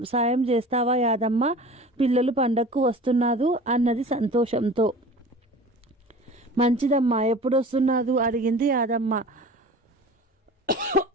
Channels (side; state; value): both; normal; correlation 0.39